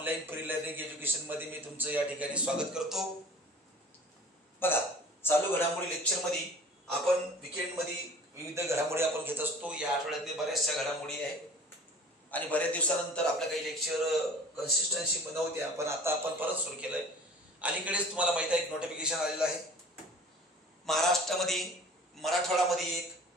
फ्री लर्निंग एज्युकेशन मध्ये मी तुमचं या ठिकाणी स्वागत करतो। बघा, चालू घडामोडी लेक्चर मध्ये आपण वीकेंड मध्ये विविध घडामोडी आपण घेत असतो। या आठवड्यातले बऱ्याचशा घडामोडी आहे आणि बऱ्याच दिवसानंतर आपल्या काही लेक्चर कन्सिस्टन्सी नव्हत्या, पण आता आपण परत सुरू केलंय। अलीकडेच तुम्हाला माहिती आहे एक नोटिफिकेशन आलेलं आहे। महाराष्ट्रामध्ये मराठवाड्यामध्ये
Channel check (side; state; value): both; normal; correlation 0.44